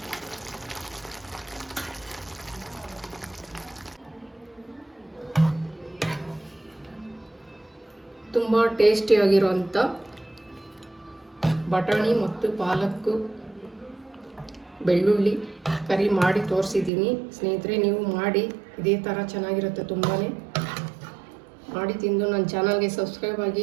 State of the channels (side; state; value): left; drops out; at 16.9 s